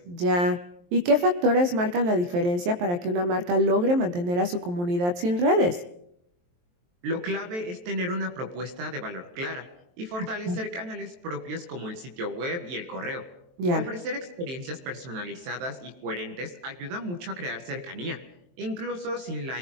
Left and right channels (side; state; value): left; late; 23 ms